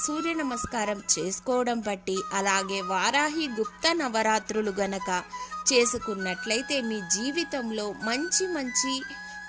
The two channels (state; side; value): identical; both; correlation 1.00